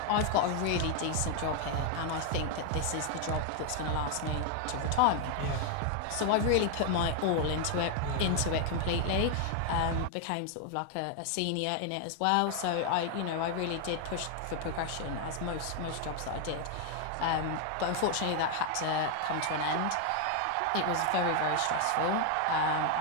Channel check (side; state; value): both; different; correlation 0.01